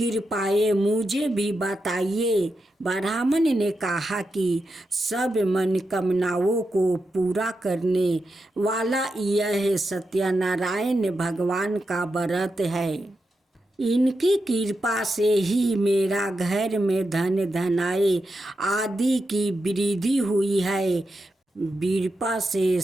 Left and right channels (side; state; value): both; normal; correlation 0.87